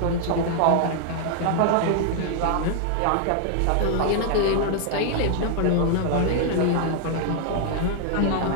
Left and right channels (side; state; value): both; different; correlation 0.00